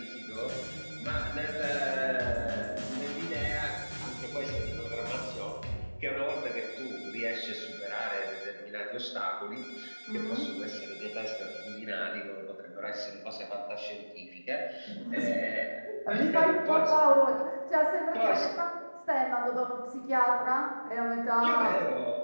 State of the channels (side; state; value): both; inverted; correlation -1.00